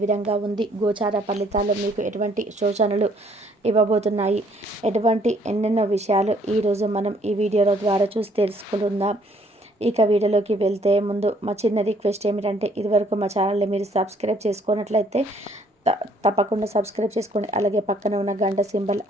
విధంగా ఉంది, గోచార ఫలితాల్లో మీకు ఎటువంటి సూచనలు ఇవ్వబోతున్నాయి, ఎటువంటి ఎన్నెన్నో విషయాలు ఈరోజు మనం ఈ వీడియోల ద్వారా చూసి తెలుసుకుందాం. ఇక వీడియోలోకి వెళ్తే ముందు మా చిన్న రిక్వెస్ట్ ఏమిటంటే, ఇదివరకు మా ఛానల్ని మీరు సబ్స్క్రైబ్ చేసుకున్నట్లయితే తప్పకుండా సబ్స్క్రైబ్ చేసుకోండి. అలాగే పక్కన ఉన్న గంట సింబల్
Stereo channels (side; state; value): both; normal; correlation 0.63